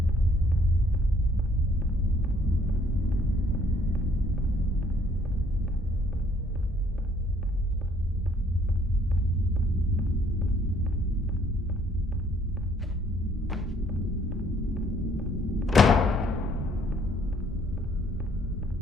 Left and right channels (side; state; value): both; normal; correlation 0.63